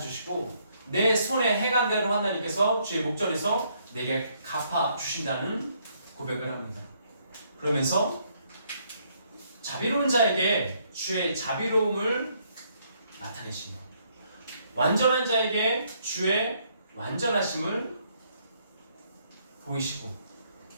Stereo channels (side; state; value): both; inverted; correlation -0.70